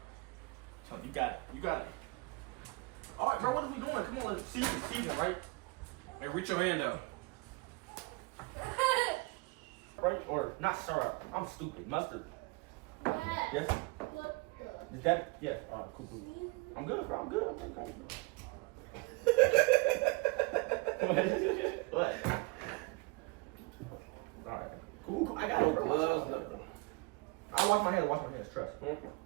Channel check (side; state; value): left; quieter; 26.9 dB